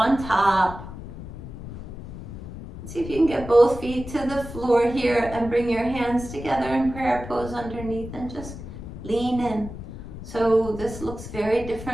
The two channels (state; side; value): noise; left; rumble, 11 dB below the sound